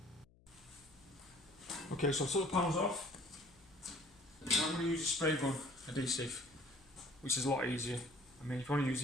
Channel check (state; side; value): noise; left; hum, 28 dB below the sound